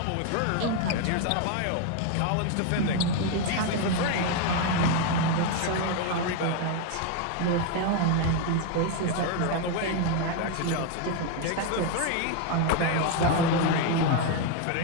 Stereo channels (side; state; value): both; different; correlation 0.01